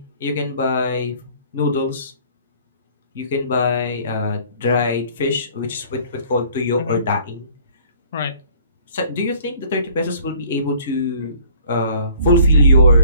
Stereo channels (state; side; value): inverted; both; correlation -0.56